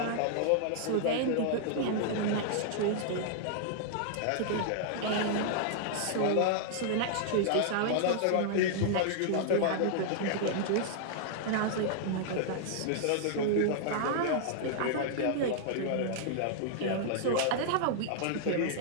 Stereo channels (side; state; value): both; different; correlation -0.01